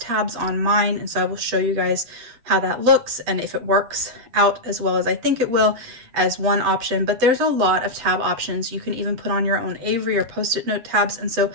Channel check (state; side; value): late; left; 8.4 ms